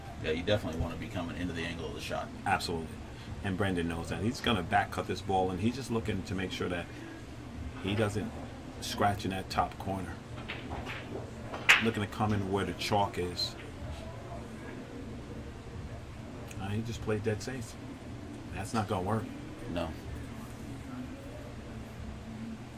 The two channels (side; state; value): both; identical; correlation 1.00